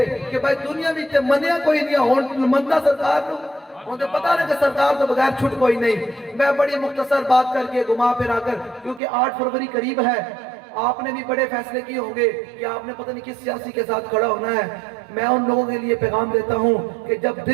کہ بھائی دنیا میں تے منیا کوئی نہیں ہون مندہ سرکار کو، انہیں پتا نہیں کہ سرکار تو بغیر چھٹ کوئی نہیں۔ میں بڑی مختصر بات کر کے گھما پھرا کر، کیونکہ 8 فروری قریب ہے، آپ نے بھی بڑے فیصلے کیے ہوں گے کہ آپ نے پتہ نہیں کس سیاسی کے ساتھ کھڑا ہونا ہے، میں ان لوگوں کے لیے پیغام دیتا ہوں کہ جب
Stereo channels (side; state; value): left; drops out; at 9.0 s